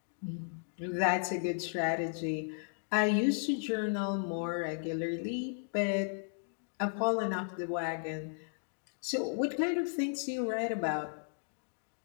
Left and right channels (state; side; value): silent; right; digital silence